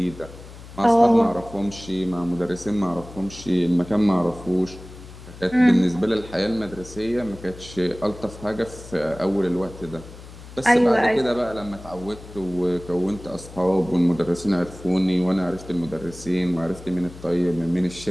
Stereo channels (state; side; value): noise; left; hum, 16 dB below the sound